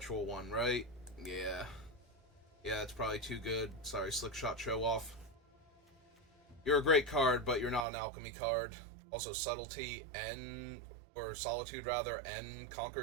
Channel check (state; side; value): drops out; left; at 7.9 s